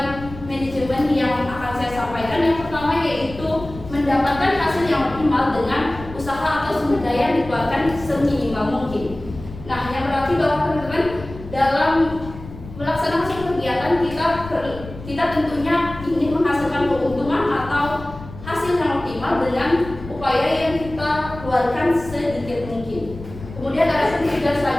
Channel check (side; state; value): left; noise; rumble, 14 dB below the sound